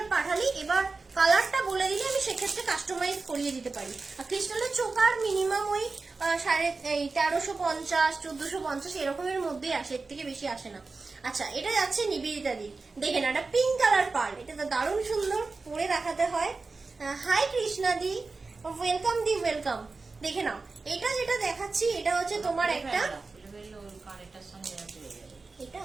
পাঠালি, এবার কালারটা বলে দিলে আমি সেক্ষেত্রে কাস্টমাইজ করিয়ে দিতে পারি। আর ক্রিস্টালের চোকার মিনিমাম ওই 1350 1450 এরকমের মধ্যেই আসে, এর থেকে বেশি আসে না। আচ্ছা, এটা যাচ্ছে নিবেদিতা দি, দেখে না, এটা পিঙ্ক কালার পার্ল, এটা তো দারুণ সুন্দর, পরে দেখাতে হয়। হাই কৃষ্ণা দি, ওয়েলকাম। দেখে নাও, এটা যেটা দেখাচ্ছি এটা হচ্ছে তোমার একটা, এটা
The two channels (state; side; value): quieter; left; 3.9 dB